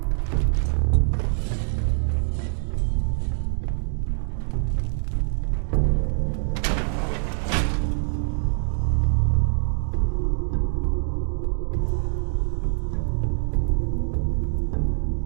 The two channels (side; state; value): left; silent; digital silence